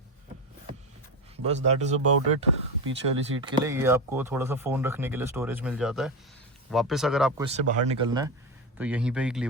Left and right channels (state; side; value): normal; both; correlation 0.18